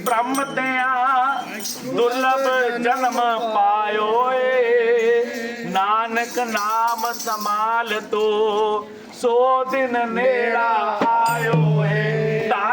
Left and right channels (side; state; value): both; identical; correlation 1.00